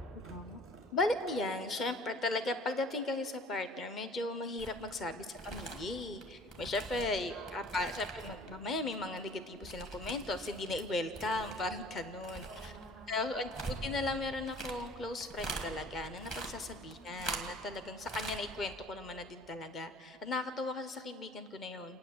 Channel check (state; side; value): normal; both; correlation 0.49